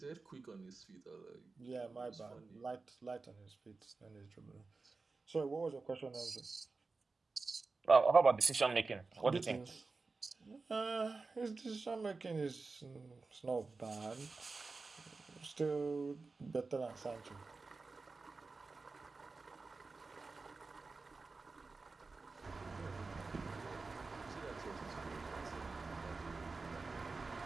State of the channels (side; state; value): left; quieter; 4.0 dB